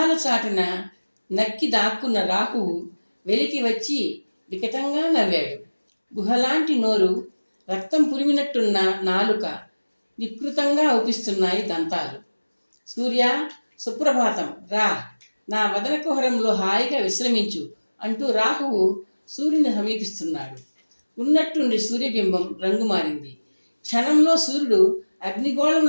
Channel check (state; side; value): inverted; both; correlation -1.00